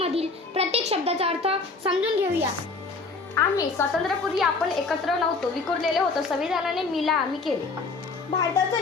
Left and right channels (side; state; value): right; quieter; 4.0 dB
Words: प्रत्येक शब्दाचा अर्थ समजून घेऊया. आम्ही स्वातंत्र्यापूर्वी आपण एकत्र नव्हतो, विखुरलेले होतो. संविधानाने मिला आम्ही केले.